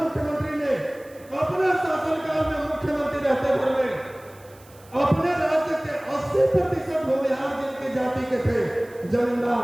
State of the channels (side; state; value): right; noise; hiss, 26 dB below the sound